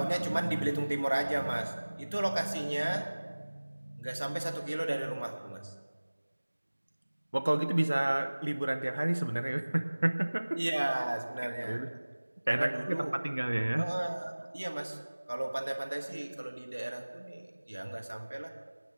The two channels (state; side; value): inverted; both; correlation -1.00